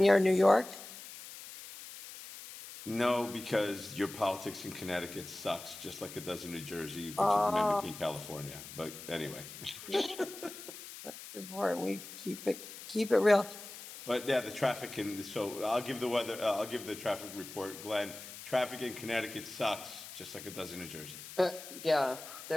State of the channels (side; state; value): left; noise; hiss, 13 dB below the sound